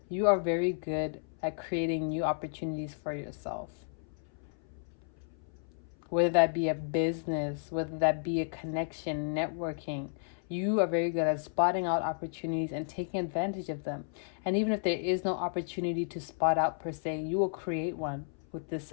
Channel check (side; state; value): right; silent; 56 dB below the other